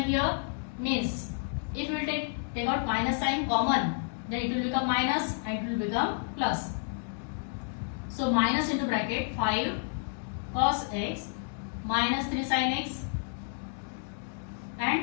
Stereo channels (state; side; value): silent; right; digital silence